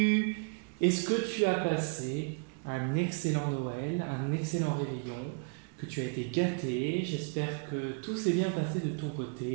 Est-ce que tu as passé un excellent Noël, un excellent réveillon, que tu as été gâté? J'espère que tout s'est bien passé de ton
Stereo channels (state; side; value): quieter; left; 38.6 dB